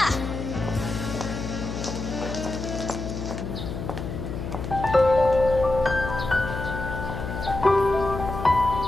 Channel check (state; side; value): noise; left; hum, 6 dB below the sound